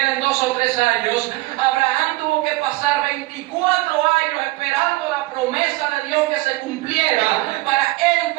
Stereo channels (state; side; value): quieter; left; 20.4 dB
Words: 2 o 3 años, Abraham tuvo que pasar 24 años esperando la promesa de Dios que se cumpliera para él